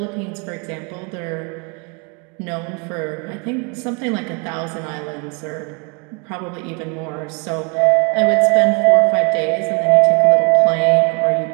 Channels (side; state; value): left; quieter; 36.2 dB